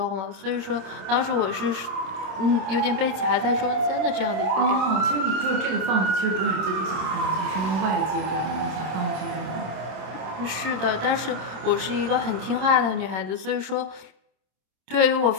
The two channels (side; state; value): left; late; 26 ms